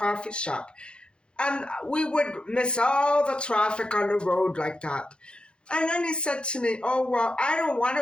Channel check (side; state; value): right; late; 0.054 ms